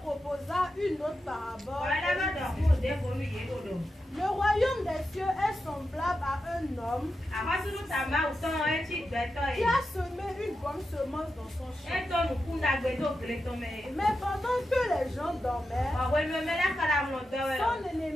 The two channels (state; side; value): normal; both; correlation 0.89